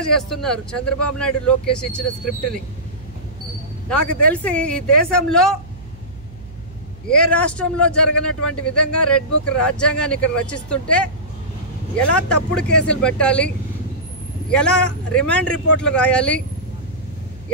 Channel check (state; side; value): noise; right; hum, 19 dB below the sound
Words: చేస్తున్నారు. చంద్రబాబు నాయుడు లోకేష్ ఇచ్చిన స్క్రిప్ట్ ని నాకు తెలిసి ఈ దేశంలో ఏ రాష్ట్రంలో జరగనటువంటి విధంగా రెడ్ బుక్ రాజ్యాంగాన్ని ఇక్కడ రచిస్తుంటే ఎలా తప్పుడు కేసులు పెట్టాలి, ఎలా రిమాండ్ రిపోర్ట్లు రాయాలి,